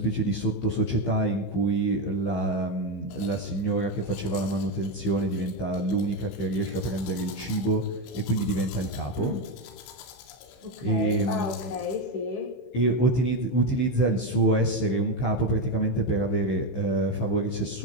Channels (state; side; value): late; right; 15 ms